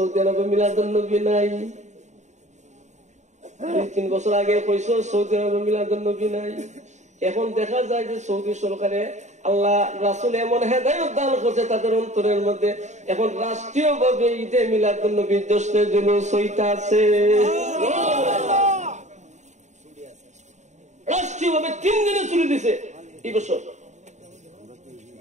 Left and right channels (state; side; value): late; left; 0.34 ms